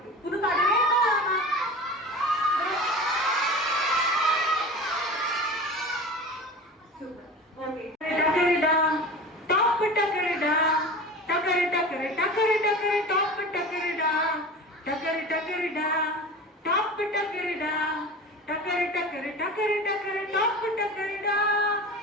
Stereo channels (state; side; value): normal; both; correlation 0.34